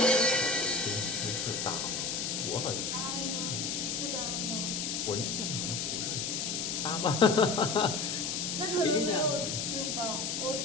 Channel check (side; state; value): left; noise; hiss, 1 dB below the sound